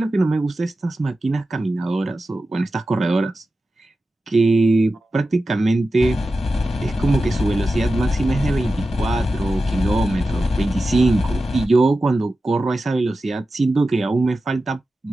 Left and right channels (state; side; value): normal; both; correlation 0.93